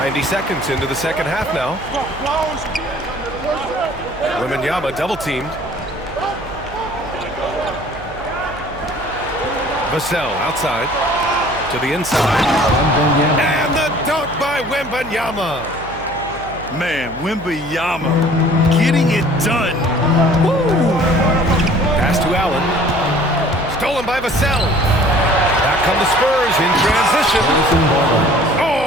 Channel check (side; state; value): right; noise; hum, 17 dB below the sound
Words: seconds into the second half now. Wembanyama double-teamed. Vassell outside to the inside. And the dunk by Wembanyama. Man, Wembanyama getting it done. Woo! Pass to Allen. Stolen by Vassell. Back come the Spurs in transition.